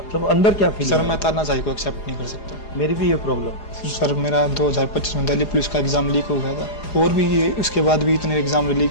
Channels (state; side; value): late; right; 4.9 ms